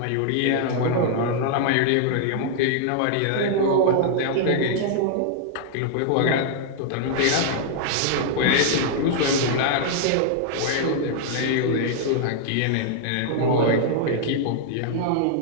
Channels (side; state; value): both; different; correlation -0.01